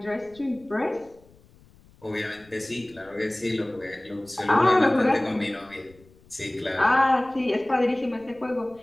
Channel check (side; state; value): left; noise; rumble, 27 dB below the sound